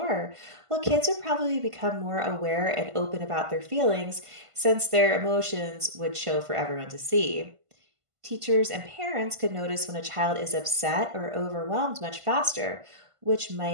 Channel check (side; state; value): left; late; 1.5 ms